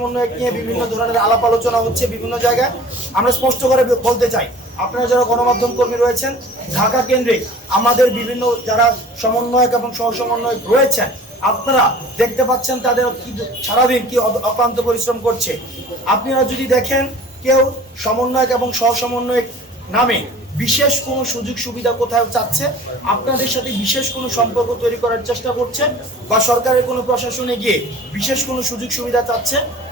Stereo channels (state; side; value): normal; both; correlation 0.46